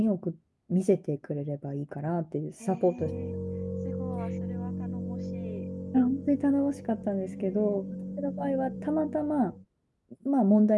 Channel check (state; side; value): identical; both; correlation 1.00